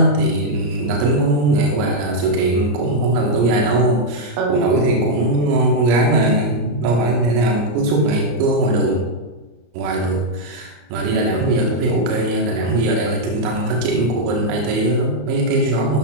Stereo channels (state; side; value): late; left; 34 ms